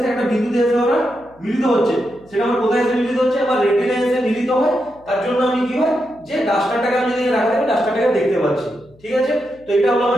একটা বিন্দুতে এসে ওরা মিলিত হচ্ছে, সেটা আমার কোথায় এসে মিলিত হচ্ছে আমার রেটিনায় এসে মিলিত হয়। তার জন্য আমি কি হয় যে ডাস্টারটাকে আমি যদি রাখা থাকি ডাস্টারটাকে দেখতে পাচ্ছি। ঠিক আছে, তো এটা হলো আমার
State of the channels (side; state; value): left; noise; hum, 28 dB below the sound